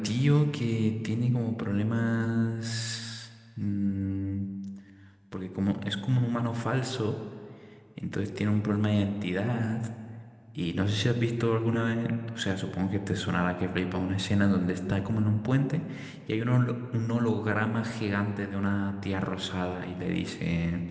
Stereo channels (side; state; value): both; identical; correlation 1.00